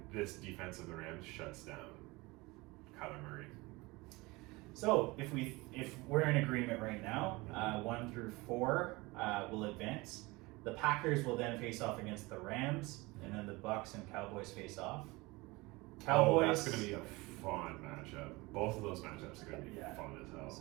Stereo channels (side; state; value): left; quieter; 23.1 dB